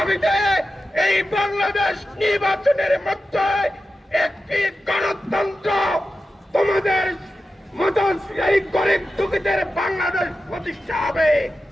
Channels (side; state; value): both; normal; correlation 0.92